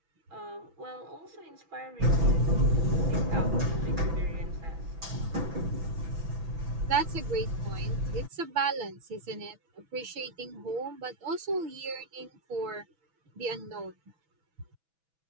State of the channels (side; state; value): left; late; 6.1 ms